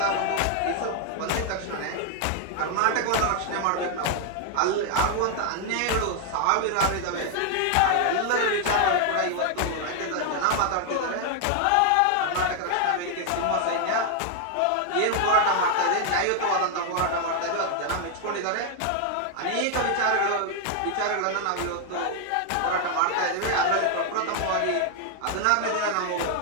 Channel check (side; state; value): both; different; correlation 0.00